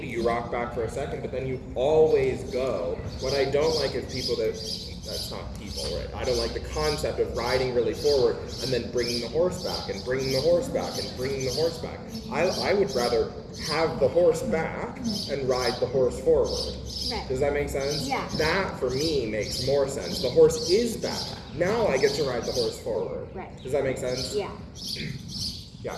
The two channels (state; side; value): identical; both; correlation 1.00